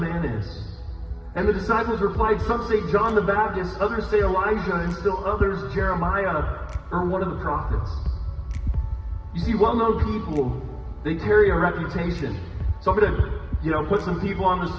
Man is?" And the disciples replied, "Some say John the Baptist, others say Elijah, and still others Jeremiah or one of the prophets." You see, well-known people, they carry a reputation. So I'm going to, put some people on the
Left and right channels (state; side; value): identical; both; correlation 1.00